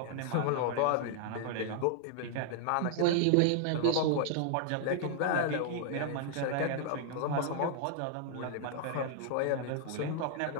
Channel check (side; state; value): both; different; correlation 0.00